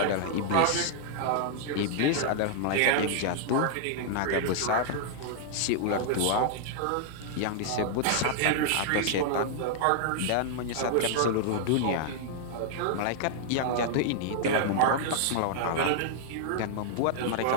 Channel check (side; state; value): both; different; correlation -0.01